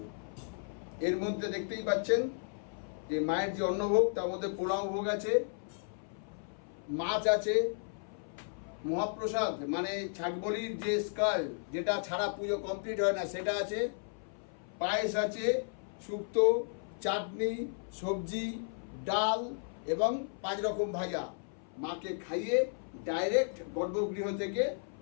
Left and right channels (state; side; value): silent; right; 55 dB below the other